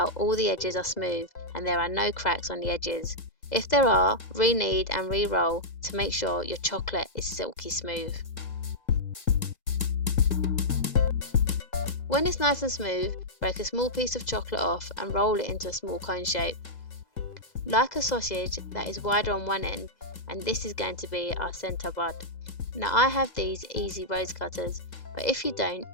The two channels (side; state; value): right; late; 2.0 ms